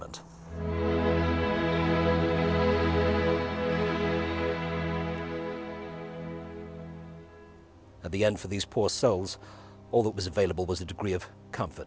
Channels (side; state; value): both; identical; correlation 1.00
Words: At the end, for these poor souls, all that was available was a degree of